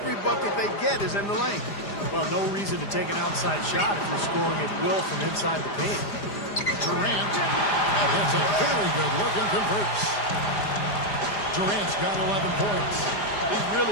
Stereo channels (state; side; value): late; right; 4.9 ms